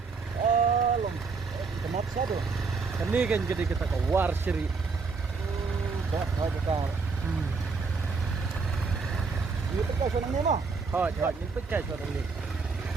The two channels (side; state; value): left; quieter; 4.7 dB